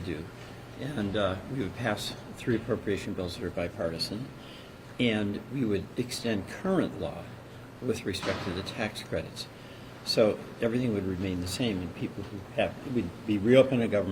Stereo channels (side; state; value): both; identical; correlation 1.00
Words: do. And we would pass 3 appropriation bills that are bipartisan. And we would extend current law with respect to the tax credits. So everything would remain the same, and people who have, we'd be reopening